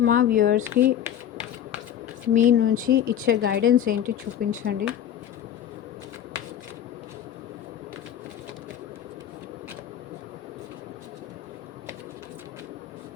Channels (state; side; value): quieter; right; 10.1 dB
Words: మా వ్యూవర్స్కి మీ నుంచి ఇచ్చే గైడెన్స్ ఏంటి చూపించండి.